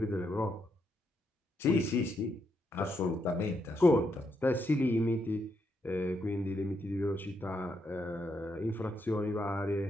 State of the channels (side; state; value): both; normal; correlation 0.79